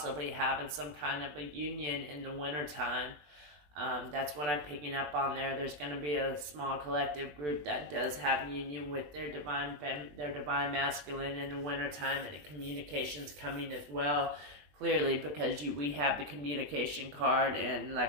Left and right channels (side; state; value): left; late; 20 ms